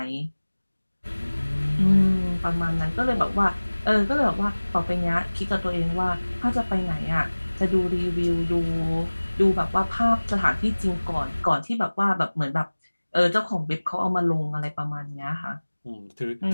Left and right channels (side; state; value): both; inverted; correlation -1.00